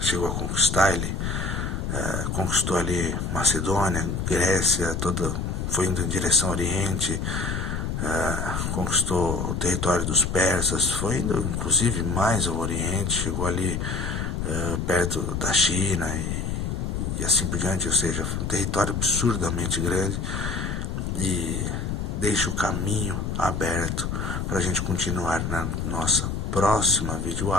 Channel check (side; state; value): left; noise; rumble, 2 dB below the sound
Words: a conquistar. Ele conquistou ali Macedônia, Grécia, foi indo em direção ao Oriente, conquistou o território dos persas, foi indo inclusive mais ao Oriente, chegou ali perto da China e assim por diante, ou seja, um território absurdamente grande, e deixa o caminho aberto para a gente continuar na nossa próxima